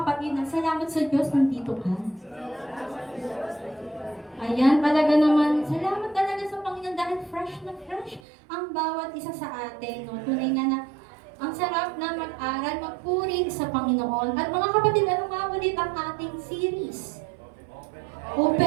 na salamat sa Diyos, nandito ka. Ayan, talaga naman, salamat talaga sa Panginoon dahil fresh na fresh ang bawat isa sa atin. No? Tunay na ang sarap na mag-aral, magpuri sa Panginoon. At mga kapatid, ano nga ulit ang ating series?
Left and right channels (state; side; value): drops out; left; at 8.2 s